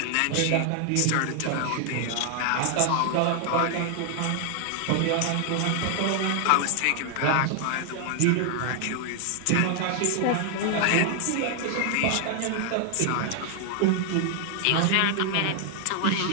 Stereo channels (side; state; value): both; different; correlation 0.00